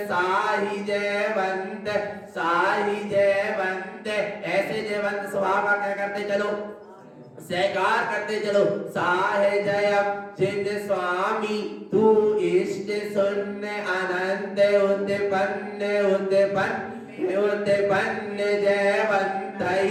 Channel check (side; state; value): both; identical; correlation 1.00